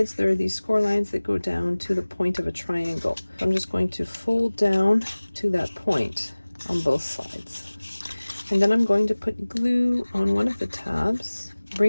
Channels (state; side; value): inverted; both; correlation -1.00